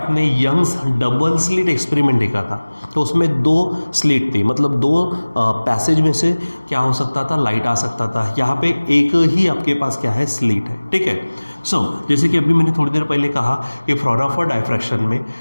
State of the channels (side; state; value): both; inverted; correlation -1.00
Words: यंग्स डबल स्लिट एक्सपेरिमेंट देखा था तो उसमें 2 स्लिट थी, मतलब 2 पैसेज में से क्या हो सकता था, लाइट आ सकता था। यहाँ पे एक ही आपके पास क्या है, स्लिट है, ठीक है। सो जैसे कि अभी मैंने थोड़ी देर पहले कहा कि फ्रॉनोफर डायफ्रैक्शन में